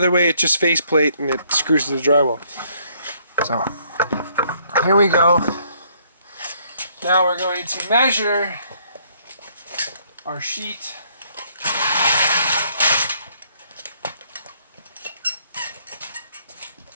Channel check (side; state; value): both; inverted; correlation -0.66